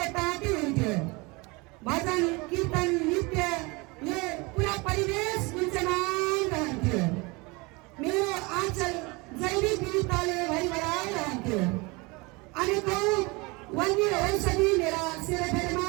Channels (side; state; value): left; quieter; 26.0 dB